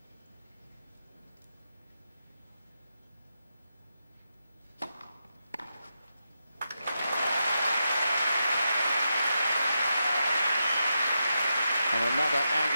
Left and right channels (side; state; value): both; inverted; correlation -0.86